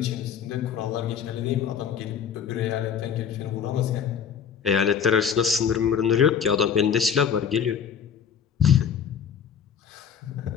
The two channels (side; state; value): right; quieter; 7.5 dB